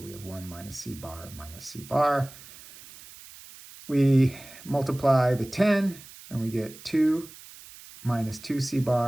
we have 1 minus C bar minus C bar. We multiply the 10, and we get 2 minus 2 C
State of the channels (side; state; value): right; noise; hiss, 18 dB below the sound